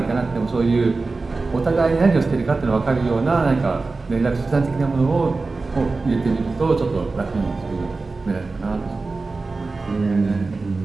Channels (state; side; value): quieter; left; 3.8 dB